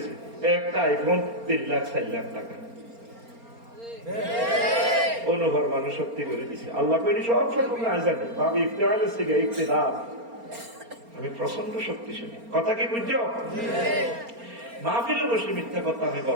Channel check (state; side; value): late; left; 4.3 ms